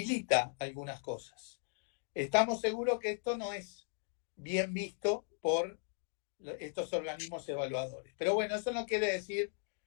algunas cosas. Estamos seguros que esto no es bien visto por estos organismos evaluadores. Pero bueno, eso no quiere decir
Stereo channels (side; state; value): right; silent; 53 dB below the other